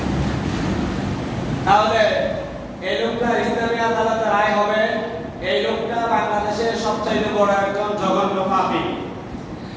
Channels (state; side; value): identical; both; correlation 1.00